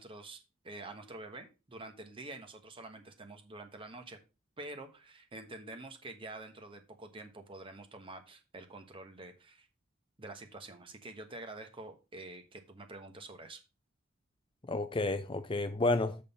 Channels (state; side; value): normal; both; correlation 0.45